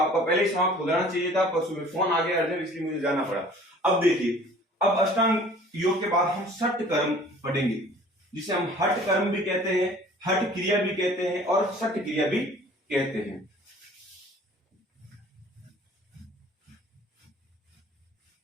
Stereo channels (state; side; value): normal; both; correlation 0.50